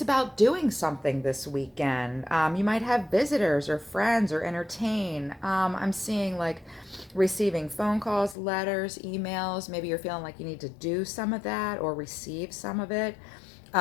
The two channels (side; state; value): right; drops out; at 8.3 s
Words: about doing something this weekend. You might have visitors or friends or entertain. I'm seeing like receiving phone calls, letters, emails. Maybe you're feeling like you need to do some of that or receive some of it.